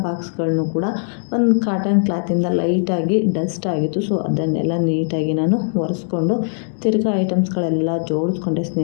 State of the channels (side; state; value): right; silent; 66 dB below the other